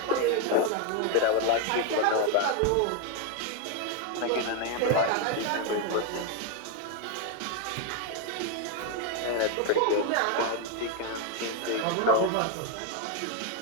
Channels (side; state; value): both; different; correlation 0.01